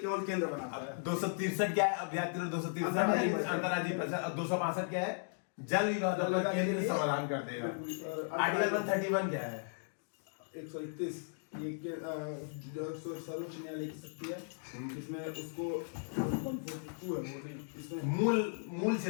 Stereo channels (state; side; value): silent; right; digital silence